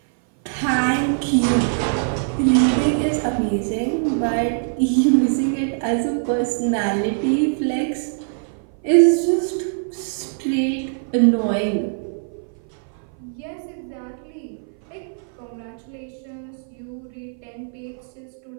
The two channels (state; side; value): silent; left; 58 dB below the other